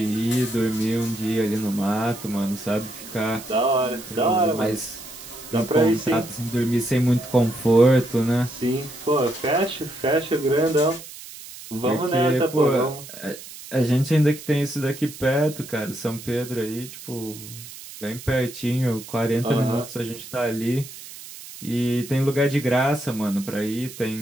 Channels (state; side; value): noise; right; hiss, 15 dB below the sound